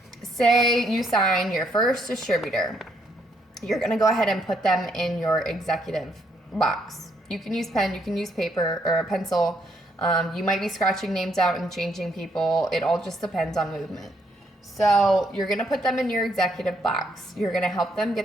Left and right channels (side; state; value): both; normal; correlation 0.72